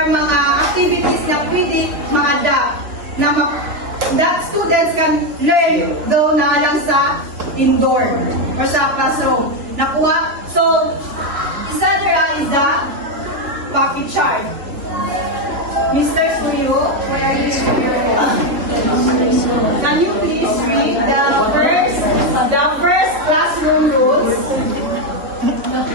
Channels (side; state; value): left; late; 3.4 ms